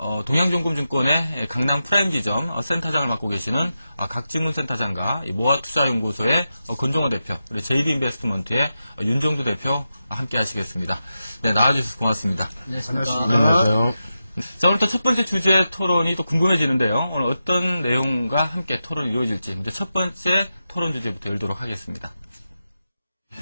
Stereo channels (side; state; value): both; inverted; correlation -0.90